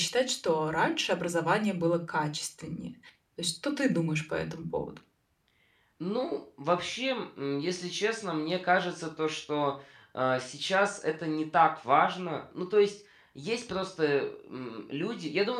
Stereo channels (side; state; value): both; identical; correlation 1.00